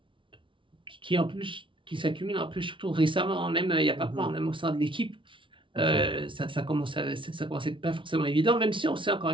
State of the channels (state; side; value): late; left; 0.25 ms